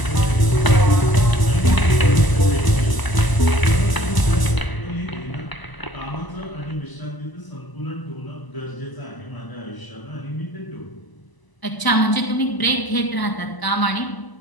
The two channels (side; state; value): right; late; 1.0 ms